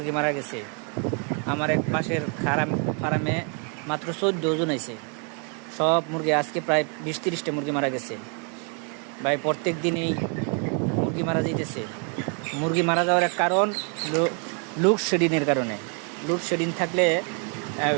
মারা গেছে। আমার এক পাশের ফার্মে মাত্র 14 জন আছে। সব মুরগি আজকে প্রায় 20-30টা মুরগি মারা গেছে ভাই। প্রত্যেক দিনই মুরগি মারা যাইতেছে। মুরগি মারা যাওয়ার এক কারণ লোডশেডিংয়ের কারণে। লোডশেডিং থাকলে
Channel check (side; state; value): left; quieter; 39.0 dB